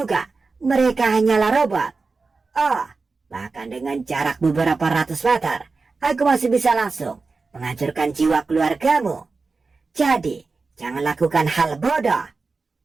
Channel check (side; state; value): left; quieter; 4.1 dB